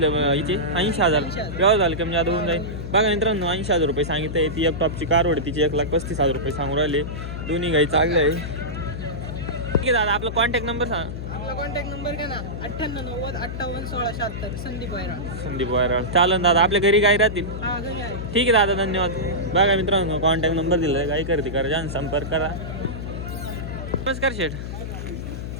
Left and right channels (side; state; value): left; noise; hum, 6 dB below the sound